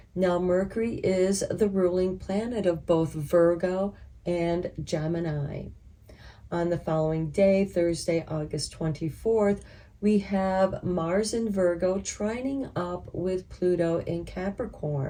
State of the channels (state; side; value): identical; both; correlation 1.00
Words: Now, Mercury is the ruling planet of both Virgo and Gemini. On the following day, Thursday, August 24th, we have Mars in Virgo trining up with Pluto in